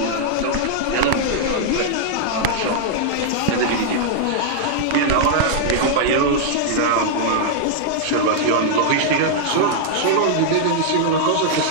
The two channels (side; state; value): both; different; correlation -0.01